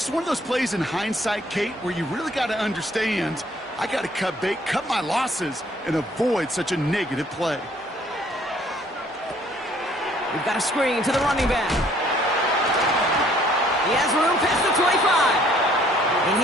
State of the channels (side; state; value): both; normal; correlation 0.61